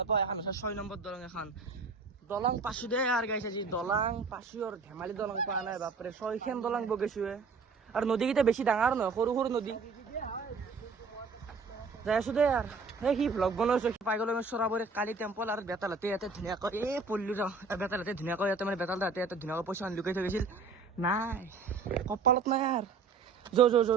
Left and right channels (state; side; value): quieter; left; 4.6 dB